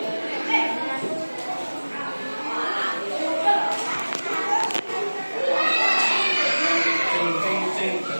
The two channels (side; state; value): both; inverted; correlation -1.00